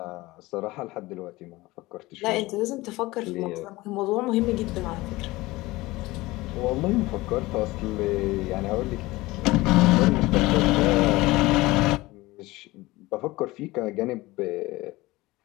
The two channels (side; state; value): right; quieter; 20.1 dB